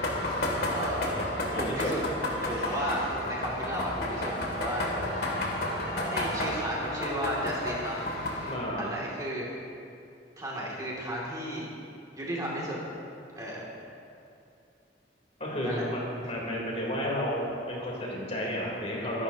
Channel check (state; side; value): normal; both; correlation 0.15